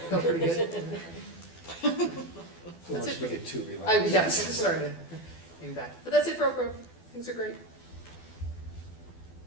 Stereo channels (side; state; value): right; late; 12 ms